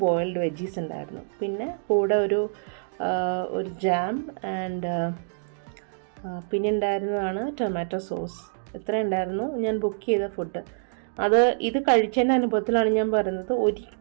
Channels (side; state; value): left; silent; digital silence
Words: ബോയിൽഡ് വെജീസ് ഉണ്ടായിരുന്നു, പിന്നെ കൂടെ ഒരു ജാം ആൻഡ് പിന്നെ ഉണ്ടായിരുന്നതാണ് ടൊമാറ്റോ സോസ്. ഇത്ര ഉണ്ടായിരുന്നു ഞാൻ ബുക്ക് ചെയ്ത ഫുഡ്. ഇത് കഴിച്ചതിൻ്റെ അനുഭവത്തിലാണ് ഞാൻ പറയുന്നത്,